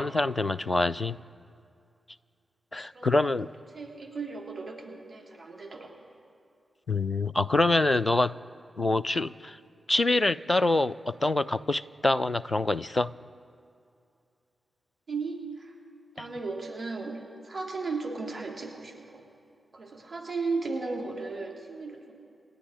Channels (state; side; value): normal; both; correlation 0.89